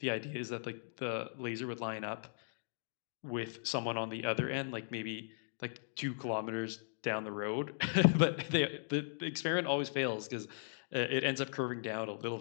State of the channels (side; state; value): right; silent; digital silence